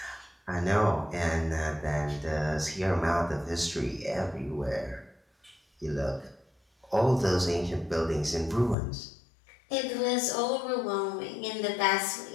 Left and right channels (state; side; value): drops out; right; at 8.8 s